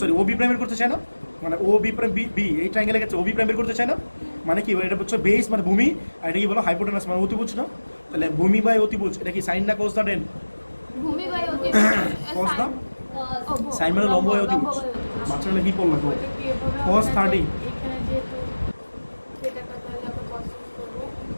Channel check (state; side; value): inverted; both; correlation -1.00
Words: ও বি প্রাইম বের করতে চাই না মানে ও বি প্রাইম বি এই ট্রায়াঙ্গেলে গেছে ও বি প্রাইম বের করতে চাই না মানে কি এটা হচ্ছে বেস মানে ভূমি আর এটা কি বলো হাইপোটেনাস মানে অতিভুজ না তাহলে ভূমি বাই অতিভুজ এটা কি সাইন না কোস না টেন ভূমি বাই অতিভুজ Cos না? ও, সাইন মানে লম্ব বাই অতিভুজ বাচ্চারা কি পড়লো তো Cos 30 এখানে যেহেতু সেটাটা তাহলে আমরা কষ্ট করবো